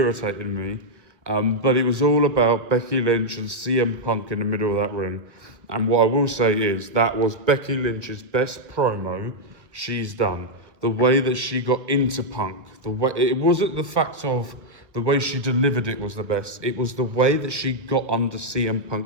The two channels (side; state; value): left; late; 1.4 ms